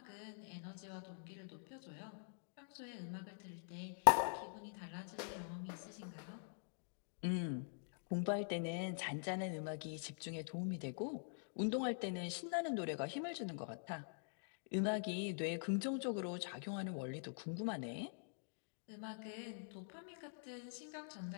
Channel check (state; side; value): silent; right; digital silence